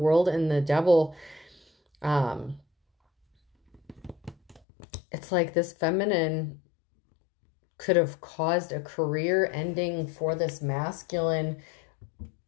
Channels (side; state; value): right; drops out; at 4.6 s